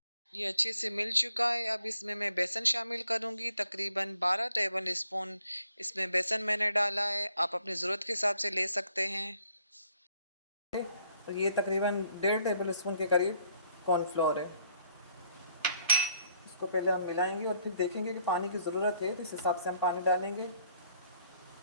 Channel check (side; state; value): both; inverted; correlation -0.67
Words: ये अच्छे से मिल चुका है। अब इसमें मैं बेसन शामिल करूंगी, तकरीबन 12 टेबल स्पून इसमें बेसन मैंने डाला है। आप अपनी ज़रूरत के हिसाब से ले सकते हैं। और ये तकरीबन 1.5 टेबल स्पून के करीब कॉर्नफ्लोर है। इसको पहले हम मिलाएंगे और फिर देखेंगे कि पानी की ज़रूरत है तो इस हिसाब से हम पानी डालेंगे।